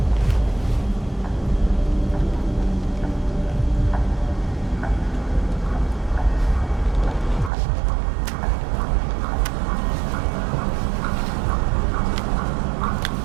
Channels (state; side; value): drops out; left; at 7.5 s